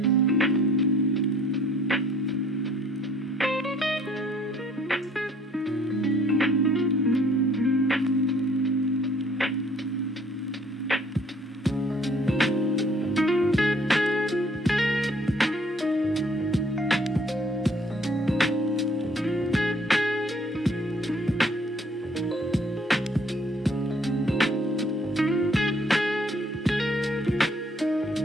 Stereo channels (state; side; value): normal; both; correlation 0.60